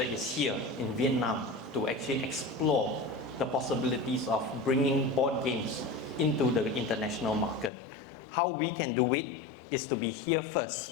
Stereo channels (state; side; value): drops out; right; at 7.7 s